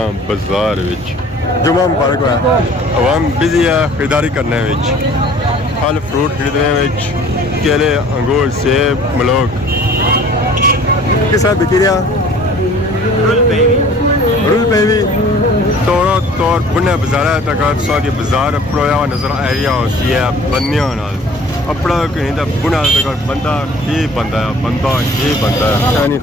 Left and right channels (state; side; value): normal; both; correlation 0.50